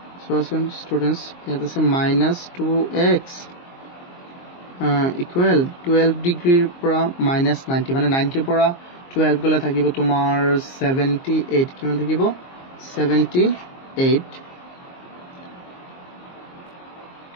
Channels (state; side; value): late; right; 22 ms